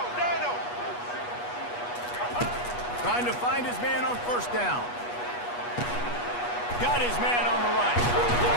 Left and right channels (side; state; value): right; late; 8.3 ms